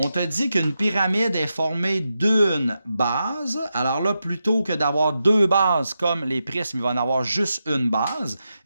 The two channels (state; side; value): inverted; both; correlation -0.88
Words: te dit qu'une pyramide est formée d'une base. Alors là, plutôt que d'avoir deux bases comme les prismes, il va en avoir juste une base.